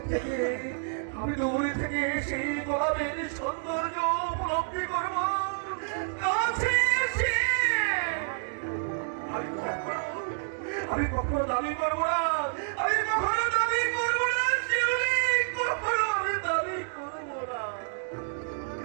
দূরে থেকে সেই গোলাপের সৌন্দর্য উপলব্ধি করবো কাছে এসে। আমি কখনো দাবি করবো না, আমি কখনো দাবি করবো না শিউলি, কখনো আমি দাবি করবো না।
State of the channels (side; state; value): left; silent; digital silence